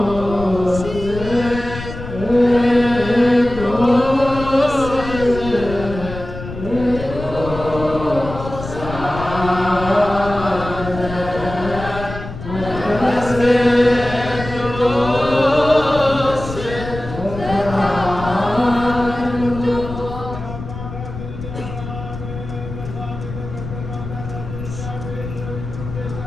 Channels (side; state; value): left; noise; rumble, 10 dB below the sound